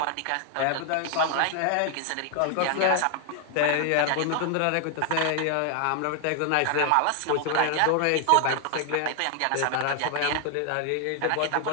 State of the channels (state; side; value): different; both; correlation 0.00